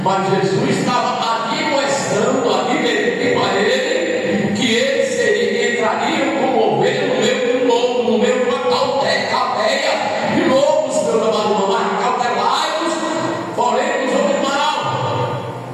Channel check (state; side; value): identical; both; correlation 1.00